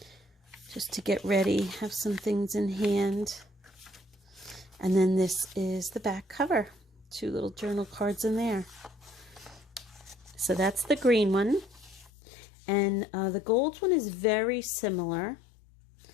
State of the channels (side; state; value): right; drops out; at 12.1 s